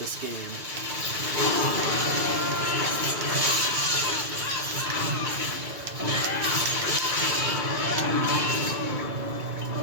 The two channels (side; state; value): left; late; 2.3 ms